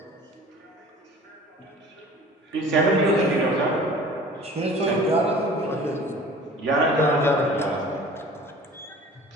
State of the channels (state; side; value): normal; both; correlation 0.44